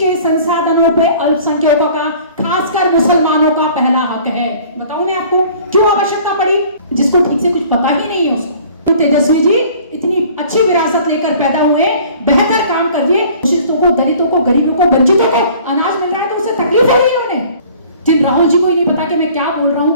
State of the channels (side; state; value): both; inverted; correlation -0.51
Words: संसाधनों पे अल्पसंख्यकों का, खासकर मुसलमानों का पहला हक है। बताऊं मैं आपको क्यों आवश्यकता पड़ी? जिसको ठीक से कुछ पता ही नहीं है उसको। तेजस्वी जी इतनी अच्छी विरासत लेकर पैदा हुए, बेहतर काम कर दिए, शोषितों को, दलितों को, गरीबों को, वंचितों को अनाज मिल रहा है तो उससे तकलीफ हो रही है उन्हें। जिन राहुल जी को ही नहीं पता कि मैं क्या बोल रहा